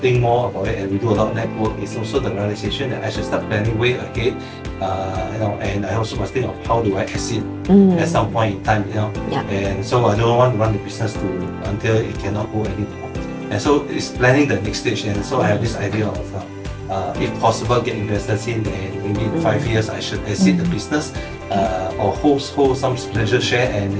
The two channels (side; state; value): both; identical; correlation 1.00